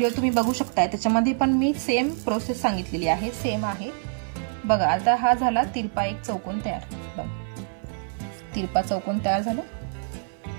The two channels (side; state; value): left; silent; 59 dB below the other